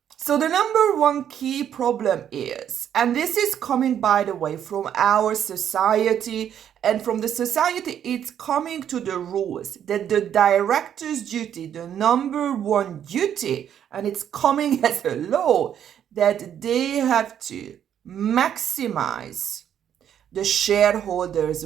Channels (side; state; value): left; quieter; 9.5 dB